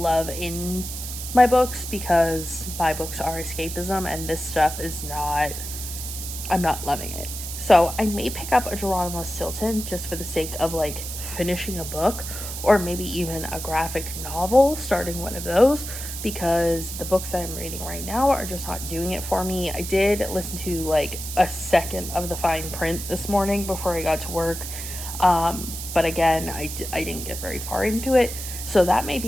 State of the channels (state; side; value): noise; right; hiss, 8 dB below the sound